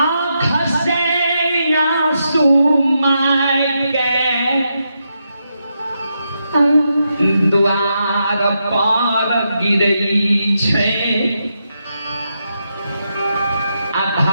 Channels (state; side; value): inverted; both; correlation -0.83